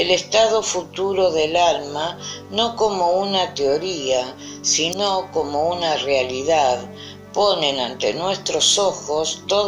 estado futuro del alma no como una teoría, sino como una realidad, ponen ante nuestros ojos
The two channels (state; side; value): identical; both; correlation 1.00